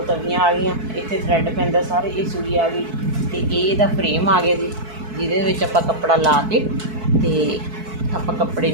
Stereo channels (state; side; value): late; left; 4.6 ms